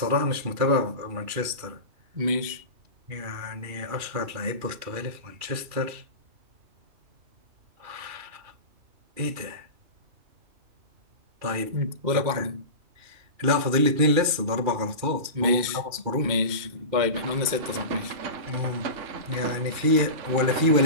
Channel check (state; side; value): late; left; 2.4 ms